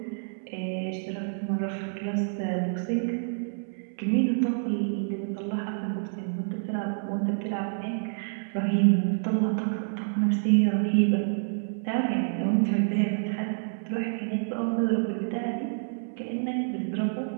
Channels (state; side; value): silent; left; 59 dB below the other